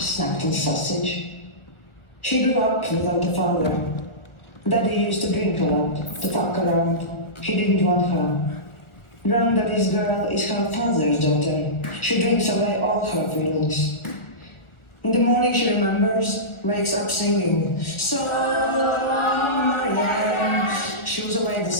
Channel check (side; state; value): right; late; 1.4 ms